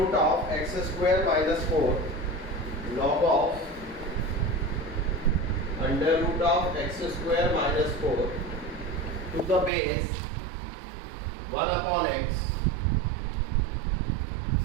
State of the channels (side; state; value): left; drops out; at 9.7 s